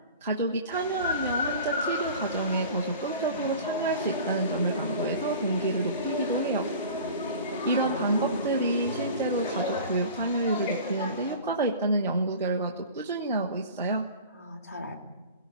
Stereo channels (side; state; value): both; inverted; correlation -0.39